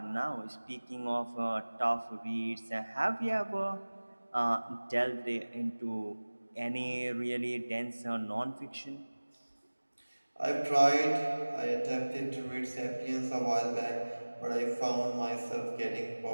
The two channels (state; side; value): inverted; both; correlation -1.00